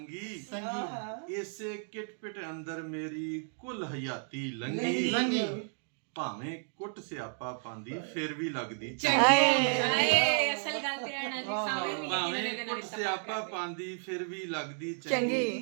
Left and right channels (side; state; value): left; silent; 55 dB below the other